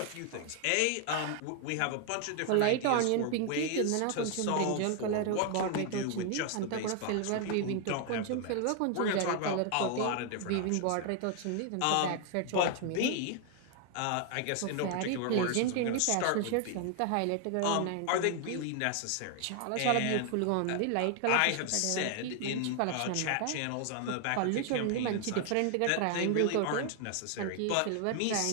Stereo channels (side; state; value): both; different; correlation 0.00